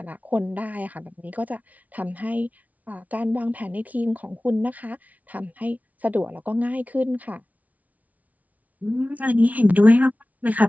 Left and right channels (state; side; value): late; left; 0.072 ms